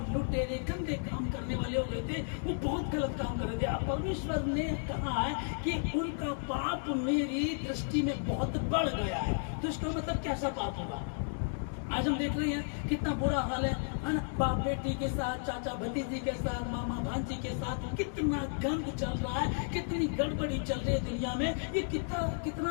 लुटेरे गंदे काम करने वाले हो गए थे, वो बहुत गलत काम कर रहे थे। अब परमेश्वर ने कहा है कि उनका पाप मेरी दृष्टि में बहुत बढ़ गया है। तो इसका मतलब कैसा पाप होगा? आज हम देख रहे हैं कितना बुरा हाल है ना, बाप बेटी के साथ, चाचा भतीजी के साथ, मामा भांजी के साथ कितना गंद चल रहा है, कितनी गड़बड़ी चल रही है दुनिया में, ये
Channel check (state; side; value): silent; right; digital silence